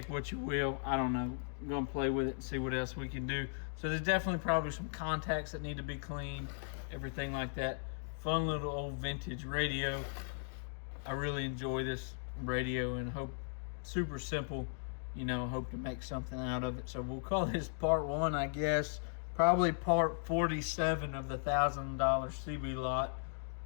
what you will. I don't know. I'm gonna play with it and see what else we can do. So there's definitely probably some contacts that need to be cleaned, everything like that. Fun little old vintage radio. I really enjoy this radio and hope, super simple, you know, hope to make something out of it. So we'll call this part 1, I guess. Probably part 47 of the $1,000 CB lot.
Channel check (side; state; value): right; silent; digital silence